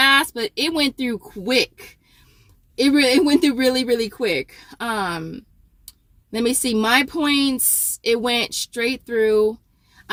but it went through quick. It went through really, really quick. Let me see. My points, it went straight through.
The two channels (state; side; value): identical; both; correlation 1.00